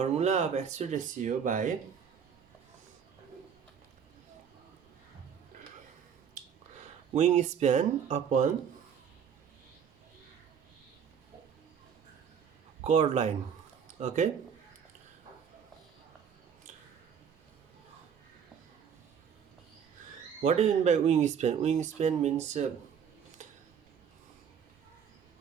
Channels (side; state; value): left; quieter; 7.6 dB